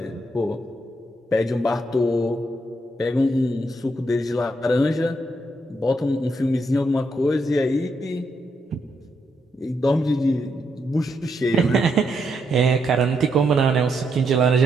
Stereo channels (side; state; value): both; normal; correlation 0.79